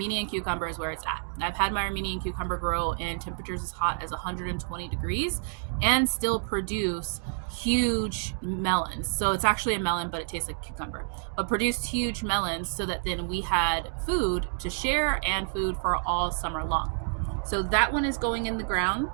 cucumber is where it's at. I've had my Armenian cucumber grow in temperatures as hot as 120 degrees and still produce huge melons. So it's actually a melon, but it tastes like cucumber, but produced huge melons so that then we had food to share and food for all summer long. So that one is going in the ground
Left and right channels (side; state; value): left; silent; digital silence